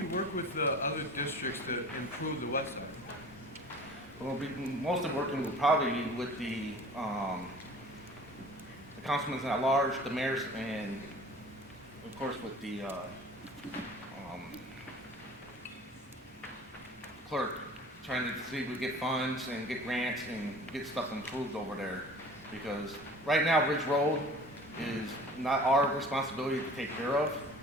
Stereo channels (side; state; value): both; normal; correlation 0.45